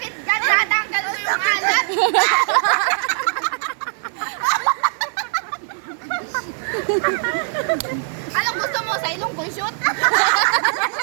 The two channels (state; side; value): silent; left; digital silence